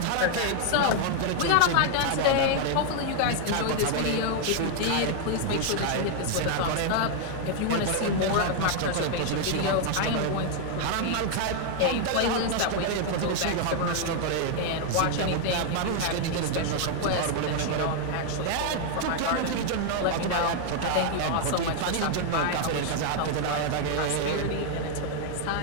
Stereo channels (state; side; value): different; both; correlation 0.00